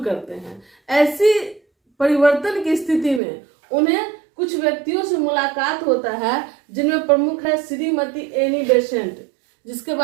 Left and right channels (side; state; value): left; drops out; at 3.2 s